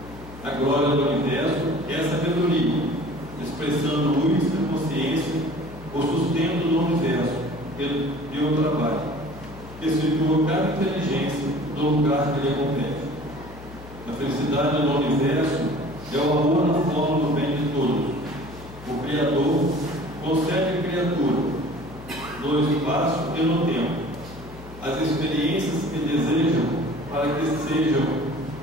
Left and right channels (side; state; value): left; noise; hum, 16 dB below the sound